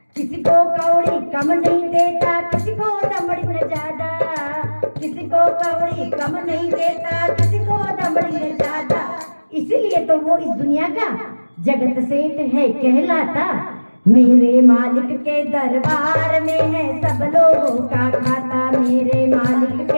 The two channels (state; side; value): inverted; both; correlation -1.00